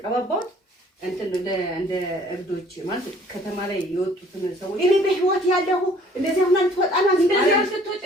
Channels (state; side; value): normal; both; correlation 0.56